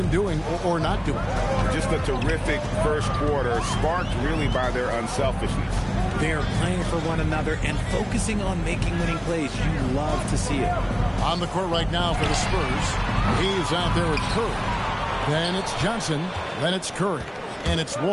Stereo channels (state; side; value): identical; both; correlation 1.00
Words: doing or not doing? Just a terrific first quarter, sparked really by their unselfishness. They're playing for one another and focusing on making winning plays. You love to see it. On the court right now for the Spurs, he's out there with Curry. Then it's Johnson, then it's Curry. And it's